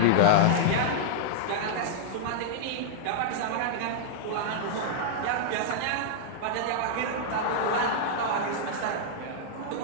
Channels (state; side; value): different; both; correlation -0.02